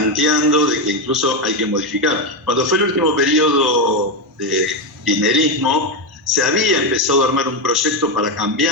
de que incluso hay que modificar. Cuando fue el último periodo de kirchnerismo, se había empezado a armar un proyecto para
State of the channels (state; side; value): normal; both; correlation 0.09